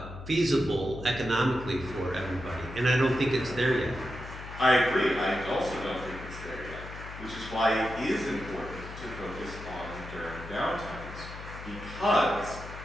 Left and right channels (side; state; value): left; noise; hum, 12 dB below the sound